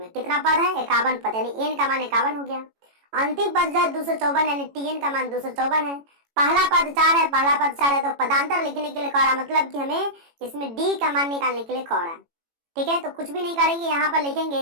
कितना पद है 51 पद, यानी n का मान 51 हो गया, अंतिम पद जो है 254 यानी tn का मान 254 है, पहला पद 4 है, पहला पद 4 है, तो पदांतर लिखने के लिए कह रहा, मतलब कि हमें इसमें d का मान निकालने के लिए कह रहा है। ठीक है, तो कुछ भी नहीं करेंगे, यहाँ पर लिखेंगे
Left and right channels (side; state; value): left; late; 18 ms